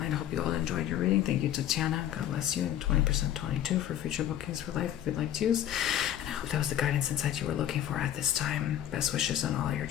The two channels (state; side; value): quieter; right; 11.3 dB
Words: I hope you all enjoyed your reading. Thank you, Tatjana. God bless you. And 20% 22 for future bookings for life if you'd like to use. And I hope that was the guidance insight you were looking for at this time. Best wishes on all your